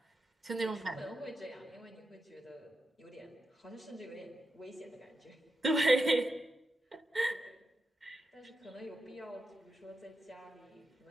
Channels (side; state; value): both; normal; correlation 0.88